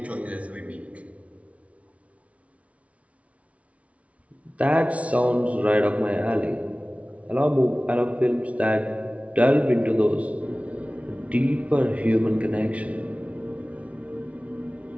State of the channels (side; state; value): left; late; 0.065 ms